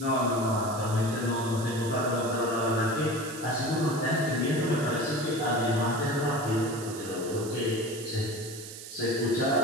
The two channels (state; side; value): noise; right; hiss, 12 dB below the sound